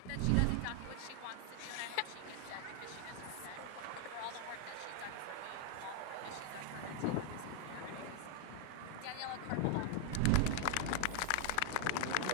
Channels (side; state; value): both; different; correlation 0.00